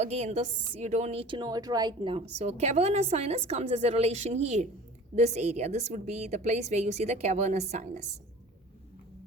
this you don't need to know it right now. So cavernous sinus comes as a relation here, this area. This would be the place where you see the cavernous sinus.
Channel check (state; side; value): normal; both; correlation 0.42